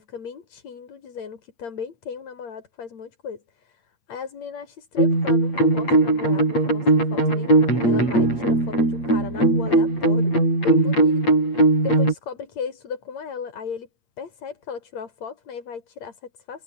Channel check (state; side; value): late; right; 8.7 ms